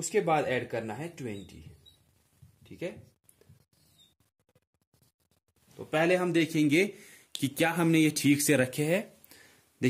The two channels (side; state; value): both; identical; correlation 1.00